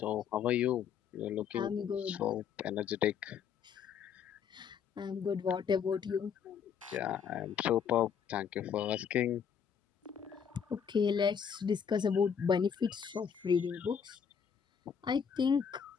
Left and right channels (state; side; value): quieter; right; 7.4 dB